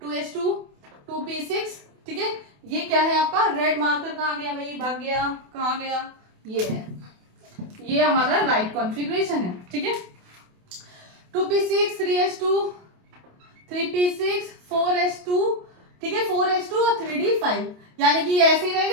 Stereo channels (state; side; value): late; left; 28 ms